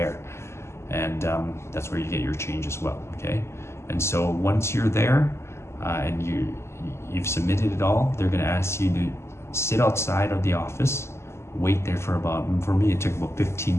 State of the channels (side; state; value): right; late; 0.13 ms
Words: and that's where you get your change as well. Okay, and so once you're there and you've submitted it all, they're going to ask you to sit outside of the office, wait there for me it took about